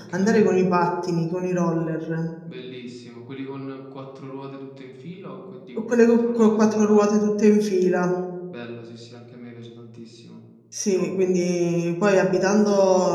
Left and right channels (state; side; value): identical; both; correlation 1.00